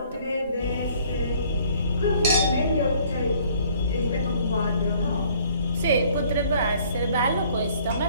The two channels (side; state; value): both; inverted; correlation -0.58